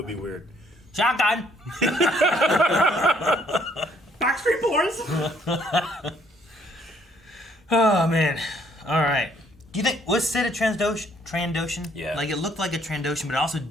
be weird. Shotgun. Backstreet Boys. Oh man. All right. Do you think was Cid a Trandoshan? Yeah. Like it looked like a Trandoshan, but it also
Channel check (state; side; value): normal; both; correlation 0.65